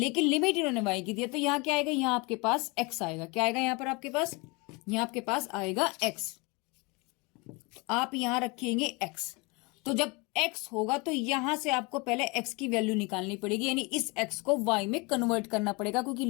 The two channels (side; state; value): right; quieter; 27.5 dB